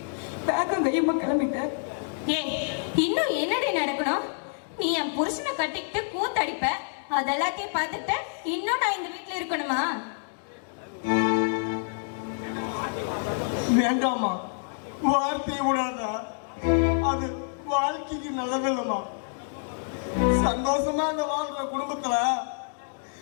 பேக்கம் கையமா கிளம்பிட்ட? இன்னும் என்னடி நடக்கணும்? நீ என் புருஷனை கட்டிக்கிட்டு கூத்தடிப்ப, அதெல்லாத்தையும் பார்த்துட்டு இன்னும் நான் இந்த வீட்டுல இருக்கணுமா? வேண்டாமா, வார்த்தையை விடாதா, அது வாழ்க்கைக்கு நல்லதில்லமா. சந்தோஷமா அந்த வாழ்ற குடும்பத்துல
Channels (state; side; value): silent; right; digital silence